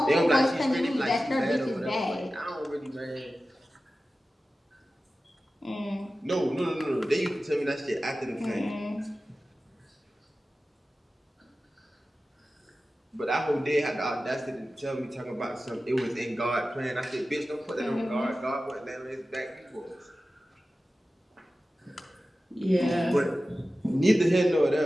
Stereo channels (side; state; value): both; normal; correlation 0.95